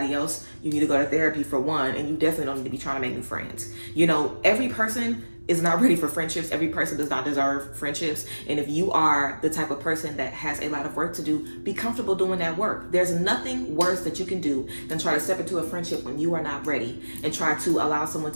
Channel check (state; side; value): inverted; both; correlation -1.00